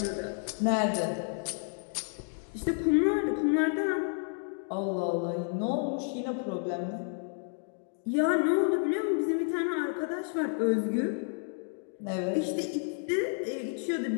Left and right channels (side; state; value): right; silent; 56 dB below the other